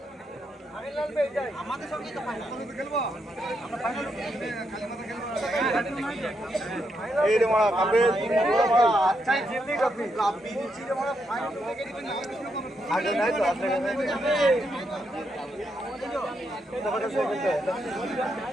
আমাদের সঙ্গে তো ফাইনাল খেলবো আমরা ফাইনাল এই রে মারা কাপে আচ্ছাই জিতলি কাপি কাপি নিচে রে মারা ফাইনাল থেকে দিবেন আগে নাই তো আগে নাই তো কথা সব বলতে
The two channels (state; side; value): normal; both; correlation 0.80